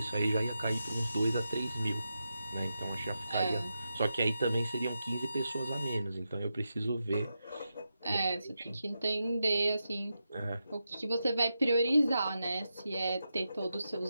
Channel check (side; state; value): both; inverted; correlation -0.88